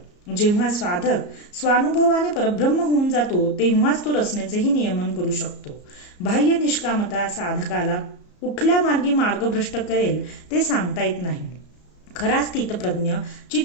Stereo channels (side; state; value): right; late; 34 ms